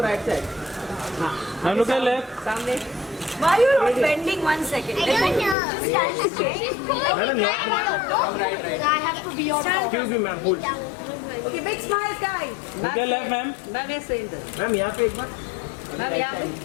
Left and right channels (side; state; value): right; drops out; at 5.6 s